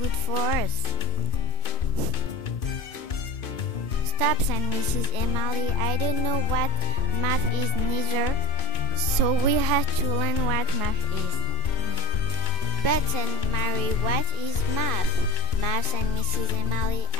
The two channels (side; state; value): right; late; 2.5 ms